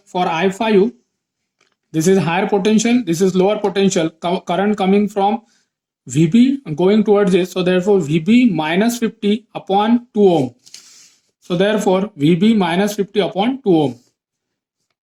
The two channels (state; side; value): identical; both; correlation 1.00